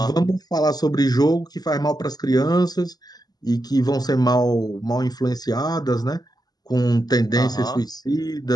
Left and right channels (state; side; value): late; right; 0.19 ms